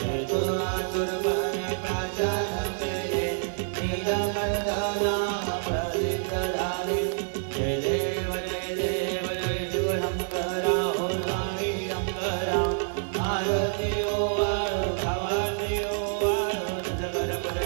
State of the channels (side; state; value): left; silent; digital silence